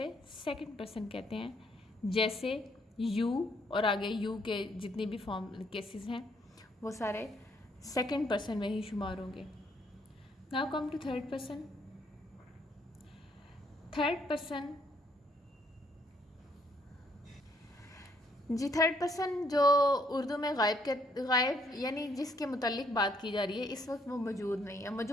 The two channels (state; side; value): normal; both; correlation 0.69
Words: सेकंड पर्सन कहते हैं। जैसे यू और आगे यू के जितनी भी फॉर्म केसेस हैं वो सारे सेकंड पर्सन में ही शुमार होंगे। Now come to third person. Third person जी, थर्ड पर्सन जो उर्दू में गायब यानी जिसके मुताल्लिक बात की जा रही है, इस वक्त वो मौजूद नहीं है।